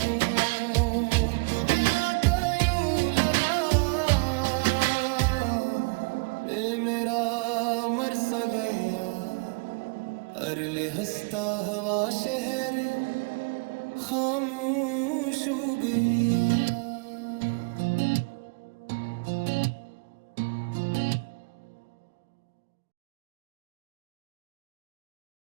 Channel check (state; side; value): quieter; left; 32.2 dB